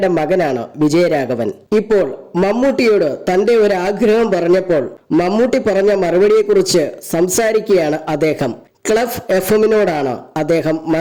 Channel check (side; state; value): both; identical; correlation 1.00